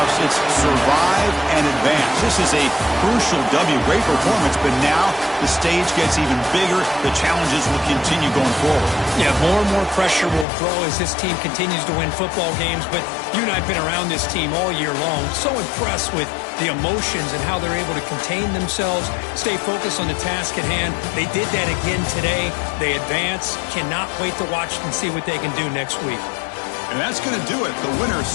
it's survive and advance. This is a crucial W. Great performance, but now the stage gets even bigger. The challenges will continue going forward. Yeah, more and more pressure will grow as this team continues to win football games. But you and I have been around this team all year long. So impressed with the emotions and how they're able to contain themselves, stay focused on the task at hand. They did that again today. They advance. Cannot wait to watch and see what they can do next week. And that's going to do it. The winner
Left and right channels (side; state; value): right; drops out; at 10.5 s